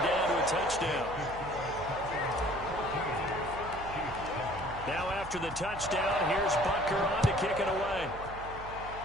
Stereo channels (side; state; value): right; noise; hum, 12 dB below the sound